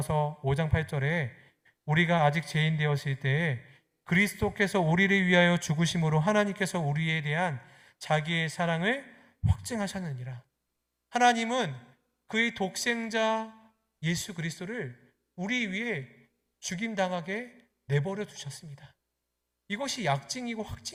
5장 8절에 우리가 아직 죄인 되었을 때에 그리스도께서 우리를 위하여 죽으심으로 하나님께서 우리에 대한 자기의 사랑을 확증하셨느니라. 하나님은 그의 독생자 예수 그리스도를 우리 위해 죽임당하게 내버려 두셨습니다. 이것이 약증이고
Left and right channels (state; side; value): identical; both; correlation 1.00